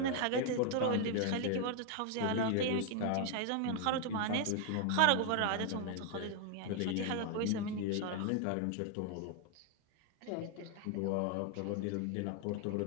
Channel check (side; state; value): both; different; correlation 0.00